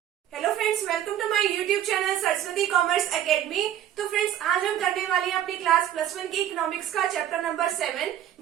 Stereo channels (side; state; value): left; quieter; 11.2 dB